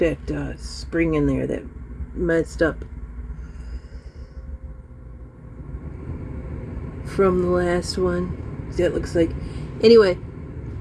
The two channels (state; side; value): identical; both; correlation 1.00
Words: spring in there that messed up from the last one. See, it looks like. Anyway,